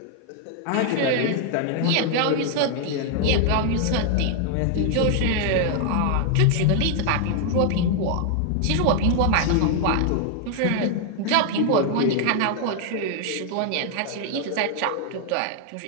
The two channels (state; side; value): different; both; correlation 0.00